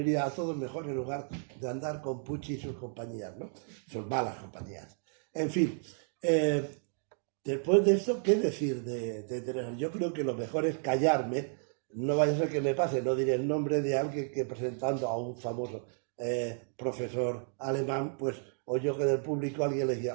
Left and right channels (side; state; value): left; silent; 56 dB below the other